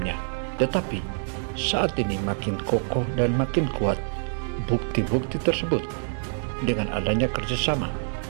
tetapi saat ini makin kokoh dan makin kuat. Bukti-bukti tersebut dengan adanya kerjasama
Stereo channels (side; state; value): left; silent; digital silence